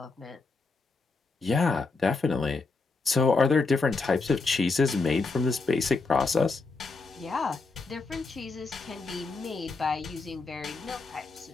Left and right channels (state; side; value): quieter; right; 3.9 dB